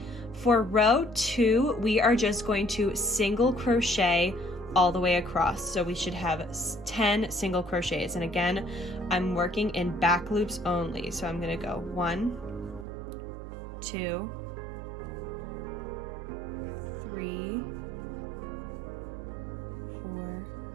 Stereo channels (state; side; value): drops out; left; at 12.9 s